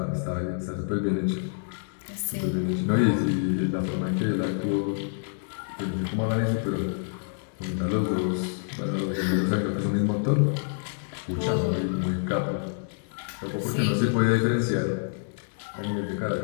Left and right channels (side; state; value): right; silent; digital silence